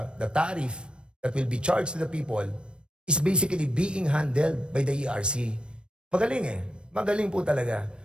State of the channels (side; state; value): left; late; 0.056 ms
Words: tariff that will be charged to the people is basically being handled by the ERC. Magaling Magaling po talaga.